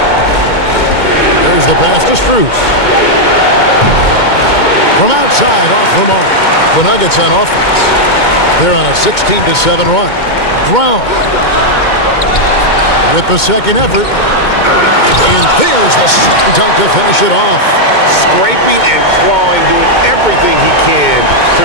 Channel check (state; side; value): late; right; 2.2 ms